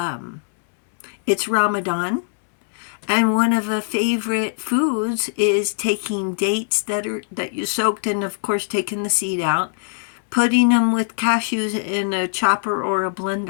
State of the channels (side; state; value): right; silent; 65 dB below the other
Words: it's Ramadan, and one of the favorite foods is taking dates that you soaked and, of course, taking the seed out, putting them with cashews in a chopper or a